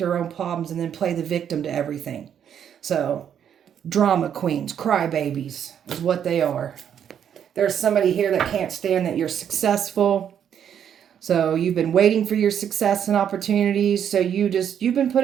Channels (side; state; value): left; quieter; 8.9 dB